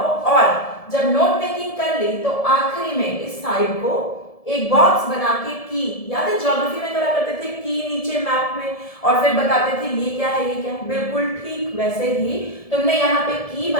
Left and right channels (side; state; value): right; late; 1.7 ms